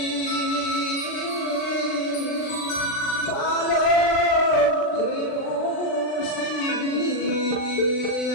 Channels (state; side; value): late; right; 40 ms